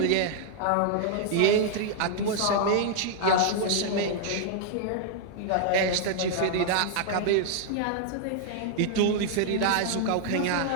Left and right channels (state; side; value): different; both; correlation 0.00